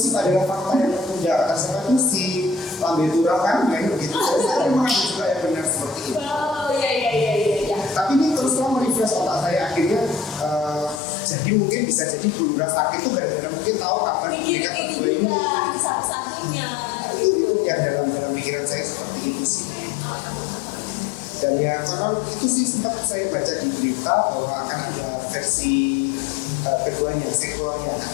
adalah fakta yang tertunda. Kata siapa itu si Lambe Turah kan main begitu. Jadi memang ada juga yang benar seperti itu. Oh iya. Tapi ini terus terang merefresh otak saya akhirnya. Jadi mungkin bisa jadi Bu Lurah sakit itu gara-gara mungkin tahu kapan mereka berdua ini. Satu-satunya. Itu yang dalam pikiran saya seperti itu sih. Dan ya karena itu sih sempat saya baca di berita bahwa akan ada versi keduanya, sequelnya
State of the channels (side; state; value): right; drops out; at 11.0 s